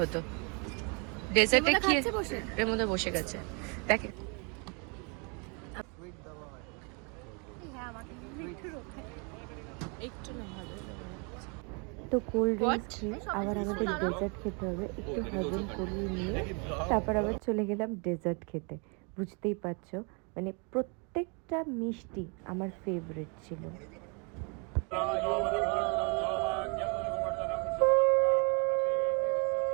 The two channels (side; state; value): left; quieter; 34.3 dB